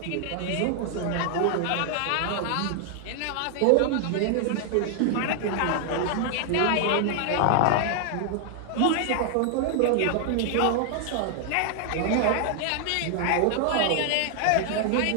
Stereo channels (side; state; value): both; different; correlation 0.00